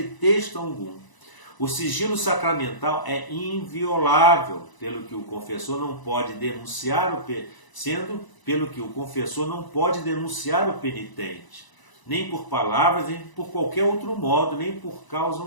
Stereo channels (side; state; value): right; late; 1.0 ms